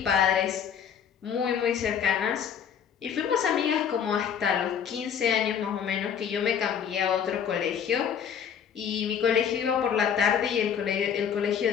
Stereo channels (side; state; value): right; quieter; 8.0 dB